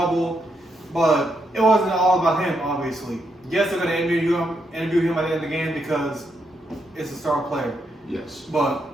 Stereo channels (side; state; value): both; normal; correlation 0.80